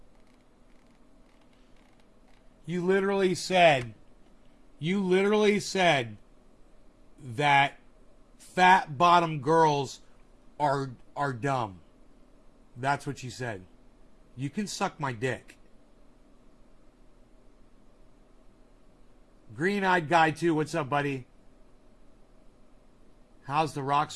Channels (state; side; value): identical; both; correlation 1.00